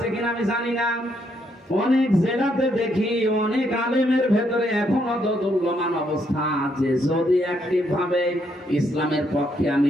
কিনা আমি জানি না, অনেক জেলাতে দেখি অনেক আলেমের ভেতরে এখনো দোদুল্যমান অবস্থা আছে। যদি অ্যাক্টিভ ভাবে ইসলামের পক্ষে আমি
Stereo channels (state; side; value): normal; both; correlation 0.74